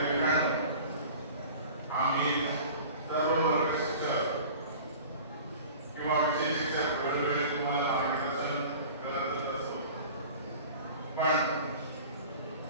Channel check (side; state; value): both; inverted; correlation -0.41